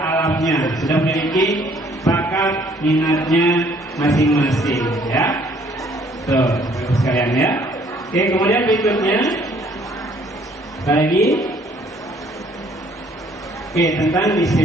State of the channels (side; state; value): both; normal; correlation 0.61